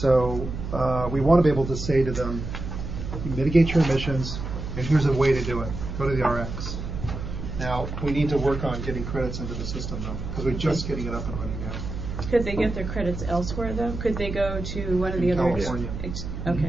we want to be able to say to them, mitigate your emissions, and here's a way to do it. Go to the RX. Now we need to work on getting credits into the system though, because we're just getting it up and running now. Could they get their credits elsewhere though? Could they go to one of the other? California.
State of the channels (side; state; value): right; noise; hum, 6 dB below the sound